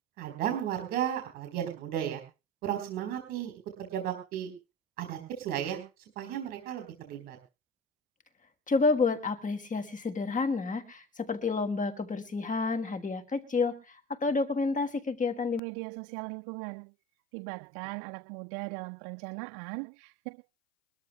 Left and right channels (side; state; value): left; drops out; at 15.6 s